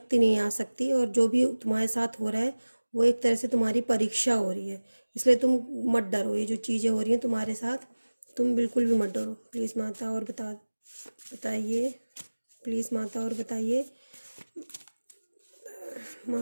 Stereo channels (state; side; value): inverted; both; correlation -1.00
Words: नहीं आ सकती और जो भी तुम्हारे साथ हो रहा है वो एक तरह से तुम्हारी परीक्षा हो रही है, इसलिए तुम मत डरो। ये जो चीज़ें हो रही हैं तुम्हारे साथ तुम बिल्कुल भी मत डरो। प्लीज़ माता और बताइए, प्लीज़ माता और बताइए